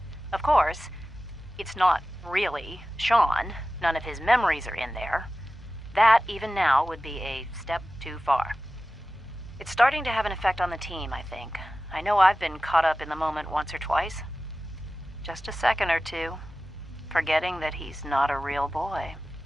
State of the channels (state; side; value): normal; both; correlation 0.95